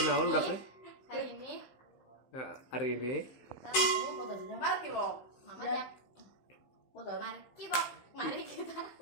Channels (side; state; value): right; late; 15 ms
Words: udah kan? Hari ini Hari ini kita mau Mari kibok. Mama Ya. Jak. Foto. Mari kibok. Mari kita